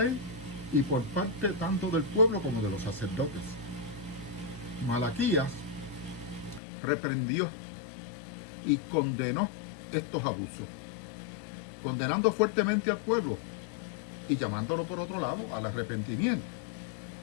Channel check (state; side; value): drops out; right; at 6.6 s